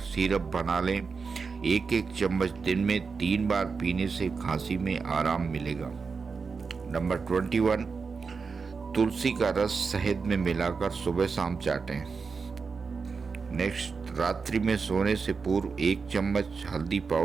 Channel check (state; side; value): quieter; left; 5.0 dB